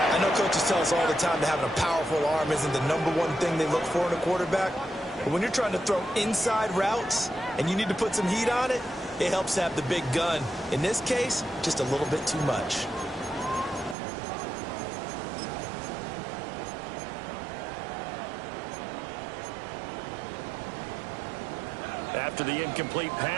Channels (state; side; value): drops out; left; at 14.0 s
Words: I know coaches tell us all the time that having a powerful arm isn't the #1 thing they look for in a quarterback. But when you're trying to throw inside routes and you need to put some heat on it, it helps to have the big gun. In this case, just a little bit too much. After the incomplete